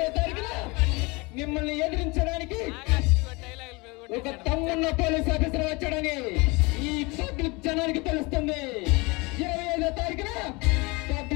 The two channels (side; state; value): right; quieter; 26.1 dB